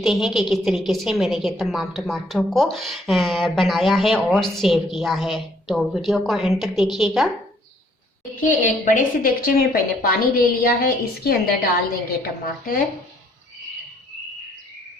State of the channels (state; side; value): normal; both; correlation 0.64